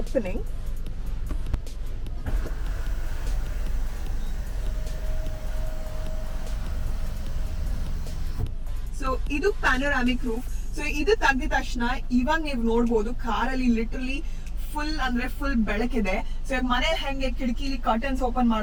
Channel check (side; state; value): both; identical; correlation 1.00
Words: So ಇದು ಪ್ಯಾನೋರಾಮಿಕ್ ರೂಫ್. ಸೊ ಇದು ತೆಗೆದ ತಕ್ಷಣ ಇವಾಗ ನೀವು ನೋಡ್ಬೋದು ಕಾರಲ್ಲಿ ಲಿಟರಲಿ ಫುಲ್ ಬೆಳಕಿದೆ. ಸೊ ಮನೆ ಹೆಂಗೆ ಕಿಟಕಿಲಿ ಕರ್ಟನ್ಸ್ ಓಪನ್